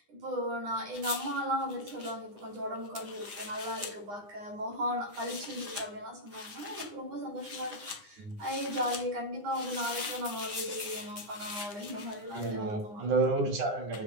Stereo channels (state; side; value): late; left; 9.8 ms